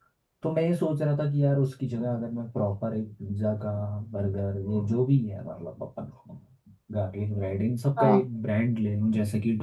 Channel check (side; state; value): both; identical; correlation 1.00